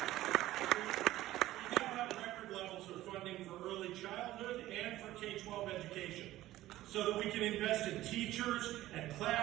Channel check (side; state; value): left; quieter; 15.3 dB